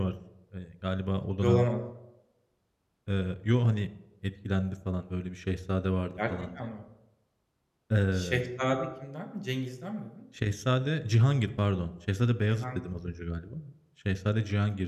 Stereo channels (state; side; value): identical; both; correlation 1.00